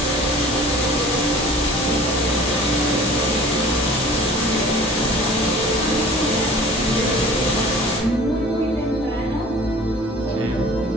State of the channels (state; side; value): normal; both; correlation 0.46